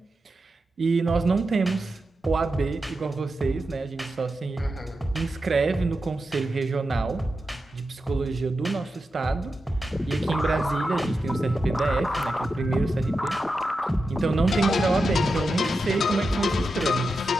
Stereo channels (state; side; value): normal; both; correlation 0.90